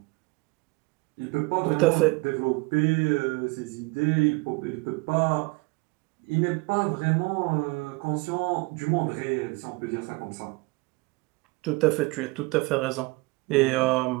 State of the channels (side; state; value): left; quieter; 25.5 dB